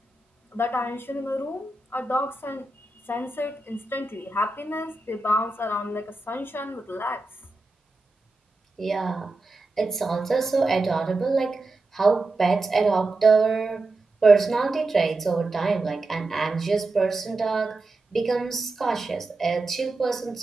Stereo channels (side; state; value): left; quieter; 3.1 dB